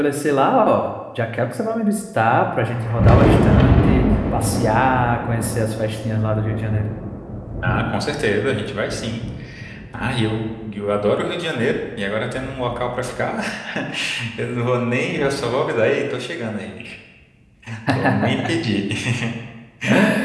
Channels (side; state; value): both; identical; correlation 1.00